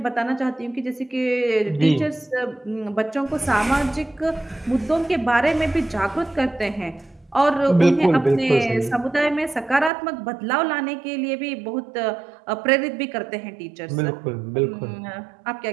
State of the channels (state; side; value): drops out; left; at 9.9 s